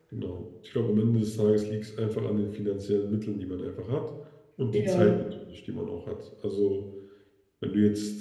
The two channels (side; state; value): both; identical; correlation 1.00